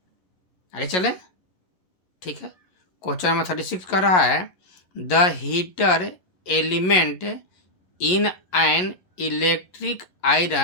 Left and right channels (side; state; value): right; late; 11 ms